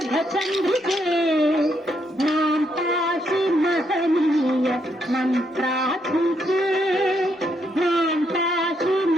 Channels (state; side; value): normal; both; correlation 0.76